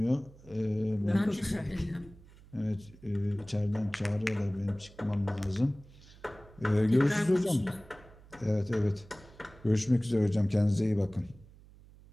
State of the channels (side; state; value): right; noise; hum, 23 dB below the sound